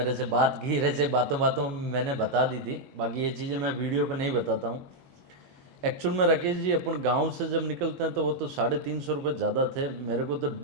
से बात की, ऐसे बातों बातों में मैंने बता दी थी, बाकी ये चीज़ें मैं वीडियो पे नहीं बताता हूँ। एक्चुअल में राकेश जी, अपन गांव से जब निकलते हैं तो वो तो 350 रुपये ज़्यादा थे। मेरे को तो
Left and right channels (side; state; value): left; late; 21 ms